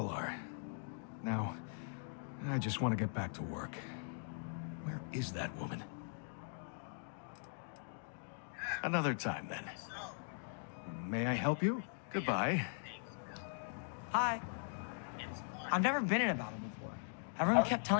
are. Now, I just want to get back to work. Where is that woman? Another time, then. May I help you? Goodbye. Hi. I've never been in a battle before. Everyone kept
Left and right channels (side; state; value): right; silent; digital silence